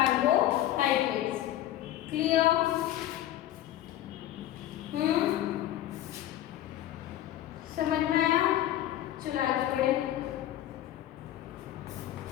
Clear? समझ में आया? चलो आगे बढ़े.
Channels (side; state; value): right; quieter; 13.1 dB